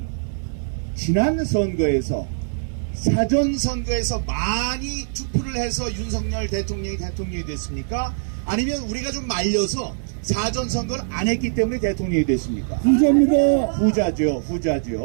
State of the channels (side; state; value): left; silent; digital silence